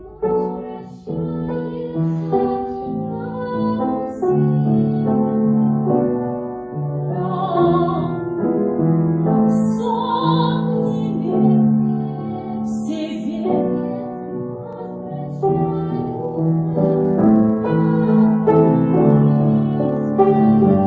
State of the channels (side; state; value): both; identical; correlation 1.00